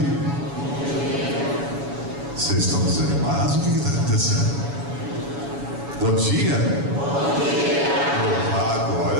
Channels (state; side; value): late; left; 7.1 ms